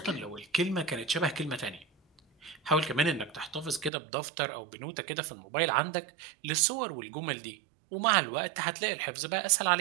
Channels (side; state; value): left; drops out; at 3.9 s